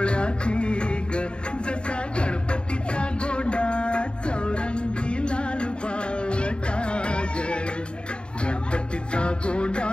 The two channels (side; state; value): right; late; 0.052 ms